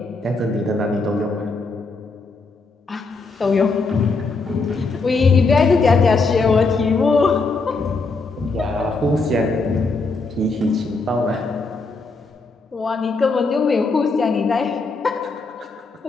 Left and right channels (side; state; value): right; quieter; 3.8 dB